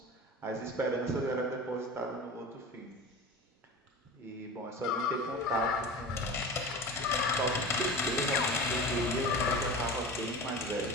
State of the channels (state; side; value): normal; both; correlation 0.33